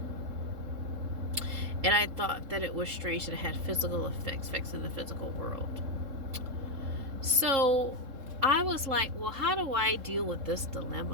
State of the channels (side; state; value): left; late; 3.7 ms